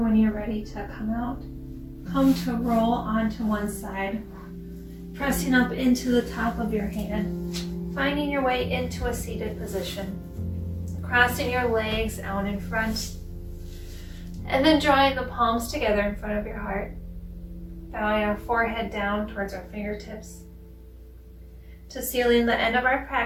when you're ready to come out, come to roll onto one side, pressing up into the top of your hand, finding your way into a seated position, crossing your legs out in front, and then drawing the palms together in front of your heart, bowing our forehead down towards our fingertips, to sealing the end of our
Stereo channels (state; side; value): identical; both; correlation 1.00